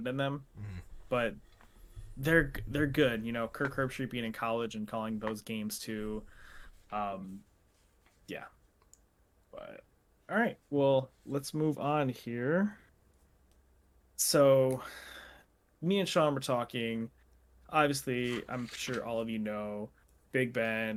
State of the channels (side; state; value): both; identical; correlation 1.00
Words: in them. Mhm. But they're good. Kirk Herbstreit being in college and calling those games too. Um, yeah. But all right, well, let's move on here. So, me and Sean were talking. Obviously, I'm sure all of you know Big